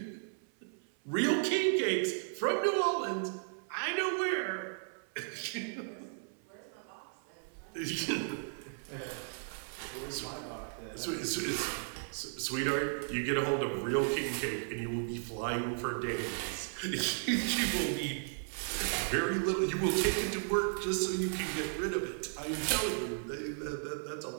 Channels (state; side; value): silent; left; 54 dB below the other